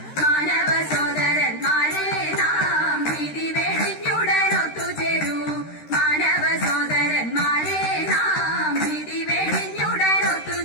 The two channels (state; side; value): late; right; 13 ms